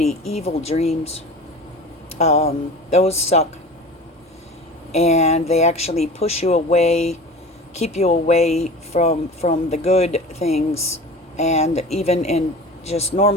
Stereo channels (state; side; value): normal; both; correlation 0.36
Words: evil dreams. Those suck. And they actually push you away, keep you away from the good things. And even in just